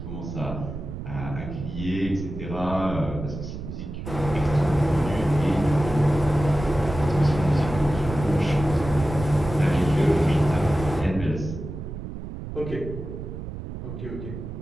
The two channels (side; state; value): right; noise; rumble, 8 dB below the sound